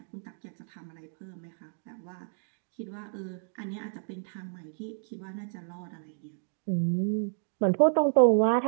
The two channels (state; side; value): silent; left; 57 dB below the other